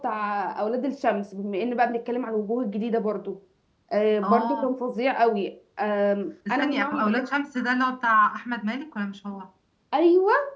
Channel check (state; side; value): identical; both; correlation 1.00